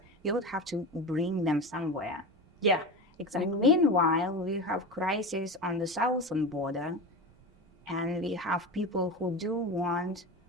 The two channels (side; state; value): both; normal; correlation 0.25